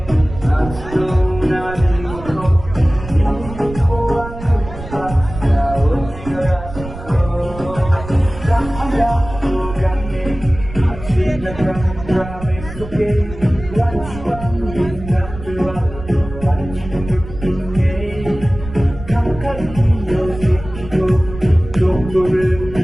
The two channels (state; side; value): noise; right; rumble, 12 dB below the sound